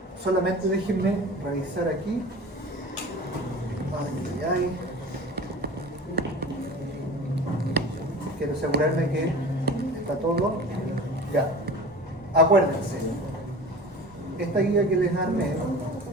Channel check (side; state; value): both; normal; correlation 0.37